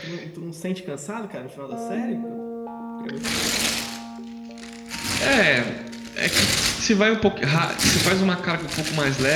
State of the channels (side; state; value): both; identical; correlation 1.00